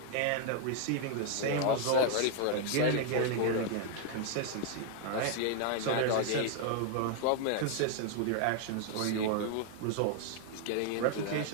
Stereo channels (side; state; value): both; different; correlation 0.00